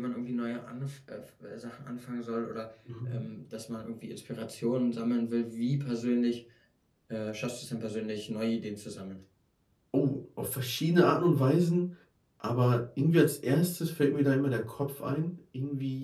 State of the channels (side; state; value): both; identical; correlation 1.00